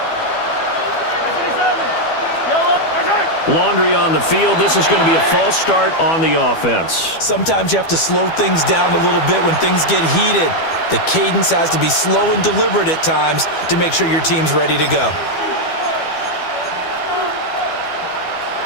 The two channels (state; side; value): late; right; 12 ms